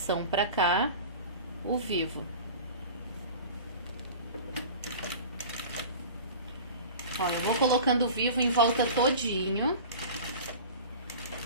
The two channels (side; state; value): both; inverted; correlation -0.37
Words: pra cá, o vivo. Ó, eu vou colocando o vivo em volta todinho.